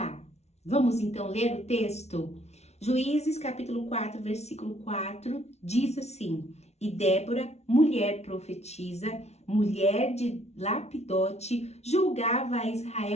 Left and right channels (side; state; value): right; late; 0.31 ms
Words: vamos então ler o texto? Juízes capítulo 4, versículo 4, diz assim: E Débora, mulher profetisa, mulher de Lapidote, julgava a